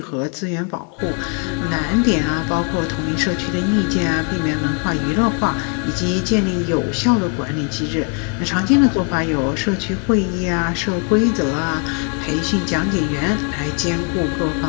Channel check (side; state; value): right; quieter; 36.6 dB